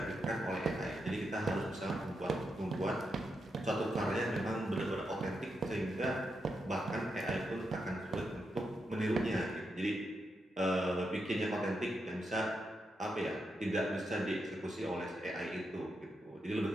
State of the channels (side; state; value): both; normal; correlation 0.84